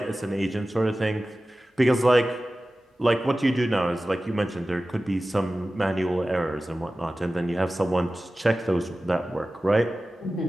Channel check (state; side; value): normal; both; correlation 0.96